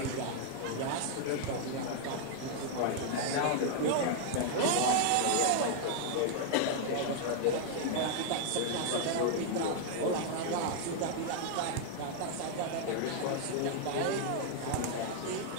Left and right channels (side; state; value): both; different; correlation -0.01